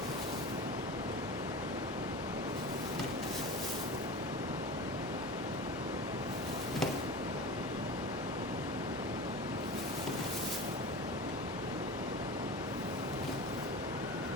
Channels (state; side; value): normal; both; correlation 0.31